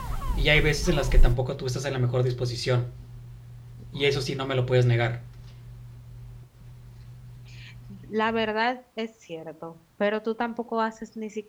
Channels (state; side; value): identical; both; correlation 1.00